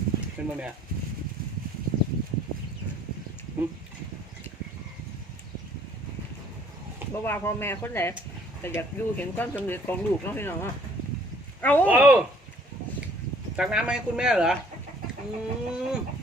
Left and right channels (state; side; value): normal; both; correlation 0.58